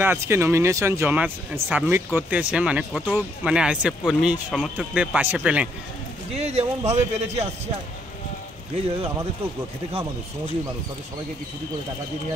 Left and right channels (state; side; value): normal; both; correlation 0.71